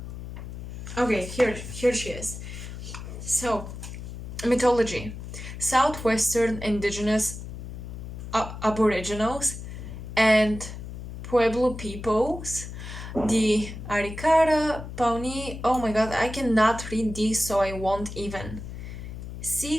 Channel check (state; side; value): noise; left; hum, 9 dB below the sound